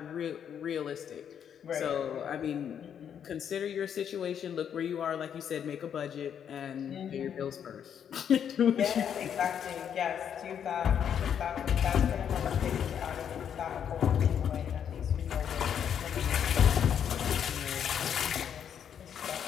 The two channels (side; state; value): right; quieter; 8.5 dB